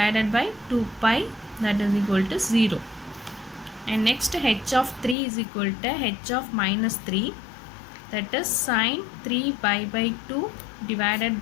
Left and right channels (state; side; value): drops out; right; at 5.2 s